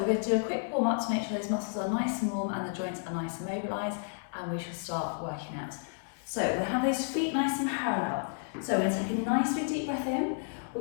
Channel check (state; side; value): silent; right; digital silence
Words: going to do a quick warm up to make sure those muscles are nice and warm and the joints are nice and mobilised, and we shall start working out. So we're going to have those feet nice and parallel. So we're going to take a nice big deep breath in,